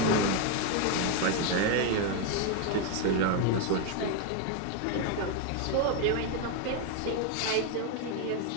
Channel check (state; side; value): different; both; correlation 0.01